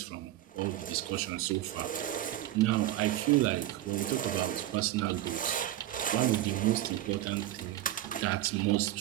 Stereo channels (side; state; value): left; quieter; 14.0 dB